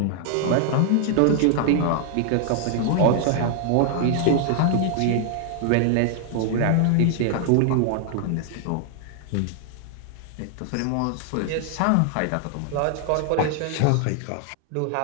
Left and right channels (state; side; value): different; both; correlation 0.00